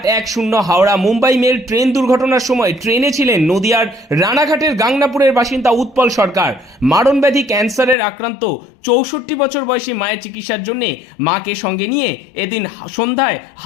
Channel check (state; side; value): drops out; right; at 8.0 s